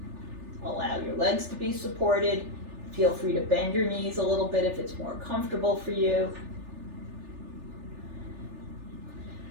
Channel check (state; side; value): late; left; 3.4 ms